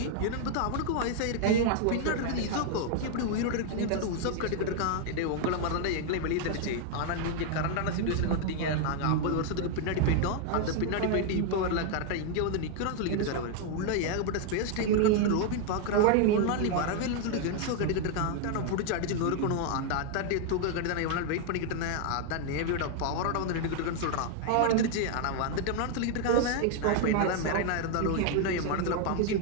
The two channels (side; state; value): both; different; correlation 0.00